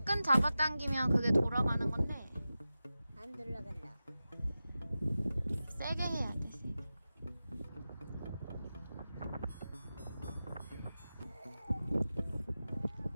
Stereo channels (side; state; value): both; inverted; correlation -0.94